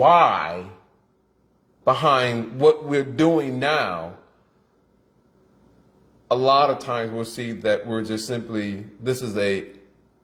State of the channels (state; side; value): identical; both; correlation 1.00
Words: behind what we're doing now, a lot of times we'll see that we're just simply, this is